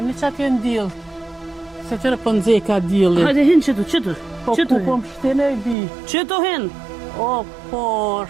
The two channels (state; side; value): drops out; left; at 5.8 s